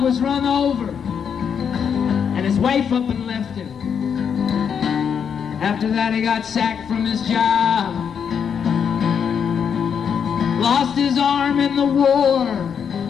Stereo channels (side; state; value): right; quieter; 7.3 dB